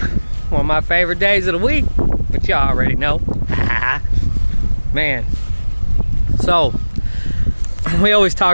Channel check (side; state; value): both; inverted; correlation -1.00